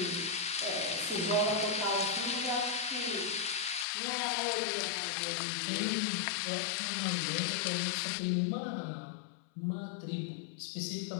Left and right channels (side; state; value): right; drops out; at 3.9 s